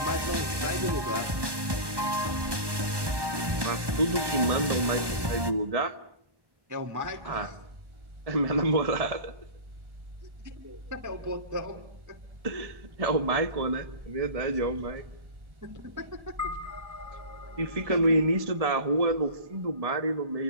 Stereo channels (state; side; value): late; left; 1.2 ms